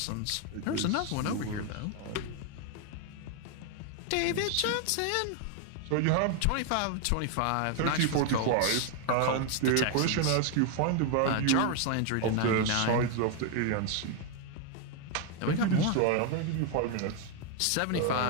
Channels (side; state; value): both; different; correlation 0.01